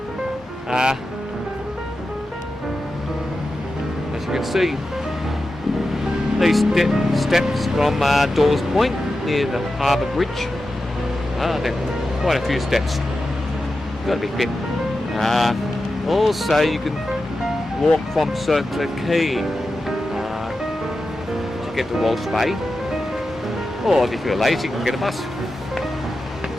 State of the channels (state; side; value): normal; both; correlation 0.91